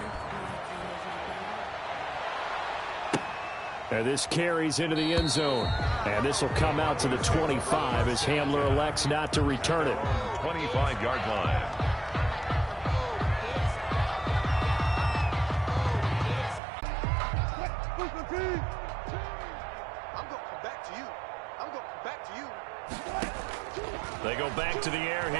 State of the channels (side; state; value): left; drops out; at 16.6 s